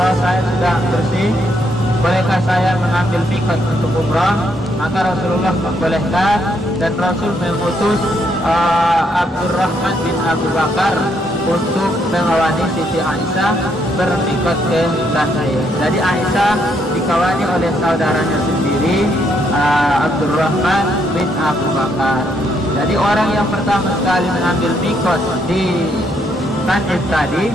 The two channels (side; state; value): both; normal; correlation 0.74